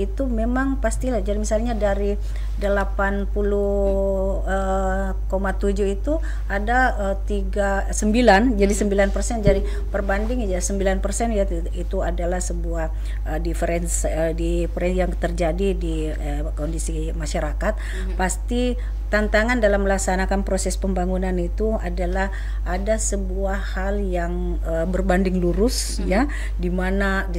itu memang pastilah, jadi misalnya dari 80,7 itu ada 9, jadi 9%, jadi perbanding ya 9% ya, itu adalah sebuah difference yang terjadi di kondisi masyarakat. Pasti tantangan dalam melaksanakan proses pembangunan itu adalah ada sebuah hal yang berbanding lurus ya, di mana di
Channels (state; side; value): identical; both; correlation 1.00